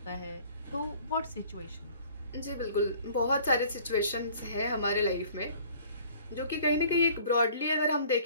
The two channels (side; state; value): both; inverted; correlation -0.52